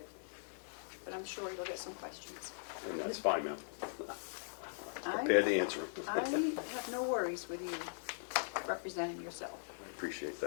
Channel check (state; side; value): silent; right; digital silence